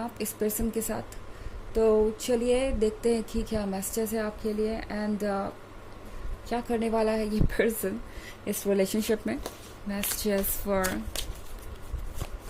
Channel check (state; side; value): identical; both; correlation 1.00